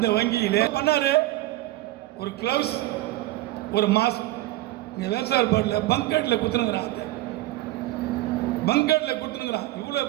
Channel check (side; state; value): left; quieter; 16.8 dB